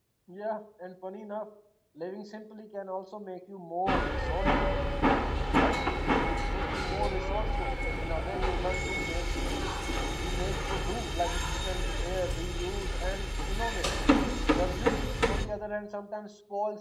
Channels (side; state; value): both; identical; correlation 1.00